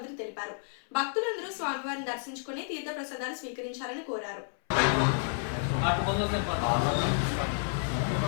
తెలిపారు. భక్తులందరూ స్వామివారిని దర్శించుకుని తీర్థ ప్రసాదాలు స్వీకరించాలని కోరారు.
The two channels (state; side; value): silent; right; 57 dB below the other